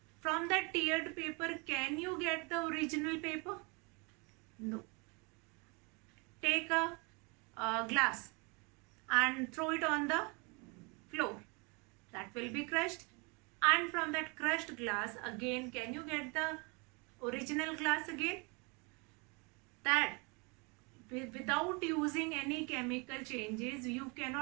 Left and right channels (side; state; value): left; quieter; 30.7 dB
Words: From that teared paper, can you get the original paper? No. Take a glass and throw it on the floor. That will be crushed. And from that crushed glass, again, can you get the original glass again? That without using any chemical changes, you